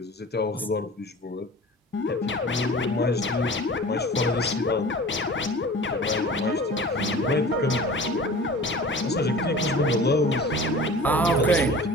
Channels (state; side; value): normal; both; correlation 0.41